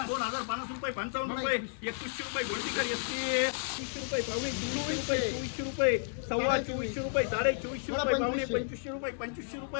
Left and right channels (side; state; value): right; silent; digital silence